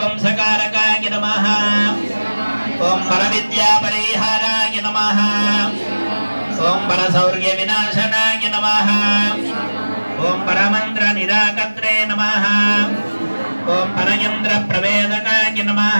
नमः, ओम परविद्या परिहाराय नमः, ओम परशौर्य विनाशनाय नमः, ओम परमंत्र निराकत्रे नमः, ओम परयंत्र प्रवेदकाय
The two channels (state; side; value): inverted; both; correlation -1.00